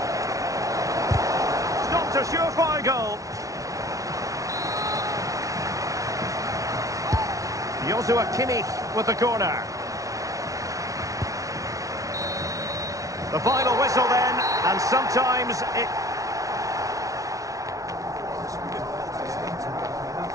Stopped a surefire goal. Joshua Kimmich with the corner. The final whistle then, and sometimes it...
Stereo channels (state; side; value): late; left; 0.17 ms